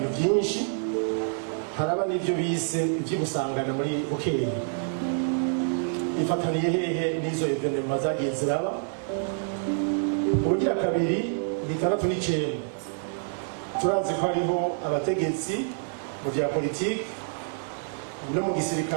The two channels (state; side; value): silent; left; digital silence